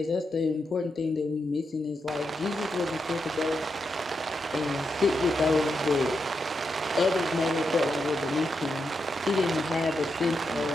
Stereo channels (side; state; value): both; normal; correlation 0.84